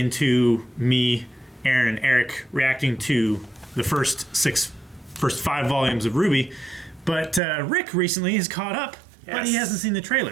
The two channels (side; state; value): left; drops out; at 7.4 s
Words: me, Aaron, and Eric reacting to the first five volumes of RWBY. But Rick recently has caught up. Yes. But he hasn't seen the